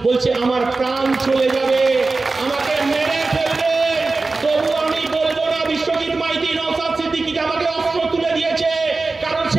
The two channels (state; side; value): quieter; left; 3.7 dB